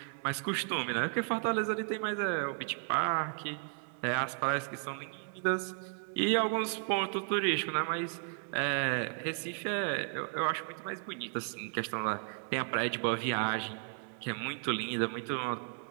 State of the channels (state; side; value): silent; left; 55 dB below the other